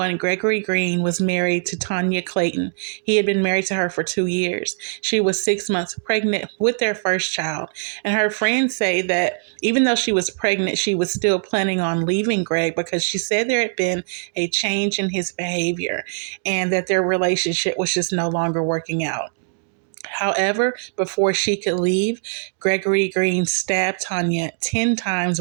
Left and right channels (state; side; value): silent; left; digital silence